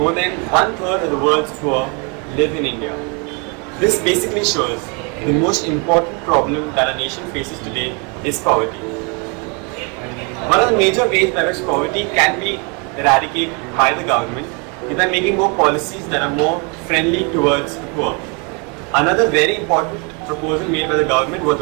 than one-third of the world's poor live in India. This basically shows the most important problem that our nation faces today is poverty. One of the major ways by which poverty can be eradicated by the government is by making more policies that are more friendly towards the poor. Another very important proposal made by the government was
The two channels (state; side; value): quieter; left; 33.2 dB